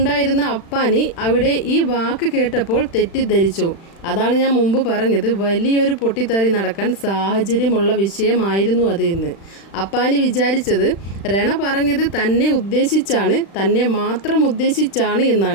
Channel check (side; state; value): right; late; 36 ms